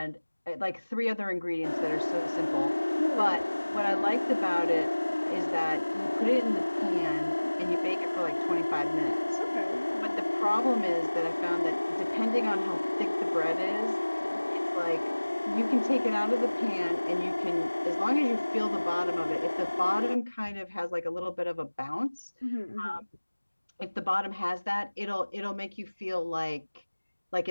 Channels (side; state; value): both; inverted; correlation -1.00